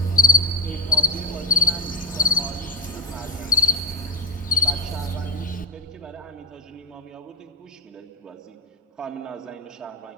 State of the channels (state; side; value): normal; both; correlation 0.19